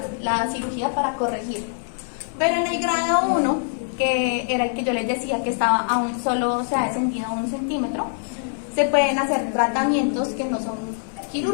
la cirugía para corregirlo. Pero en el grado 1, que era el que yo les decía que estaba aún solo, se ha descendido a 1 centímetro, se pueden hacer tratamientos que no son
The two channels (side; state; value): right; silent; digital silence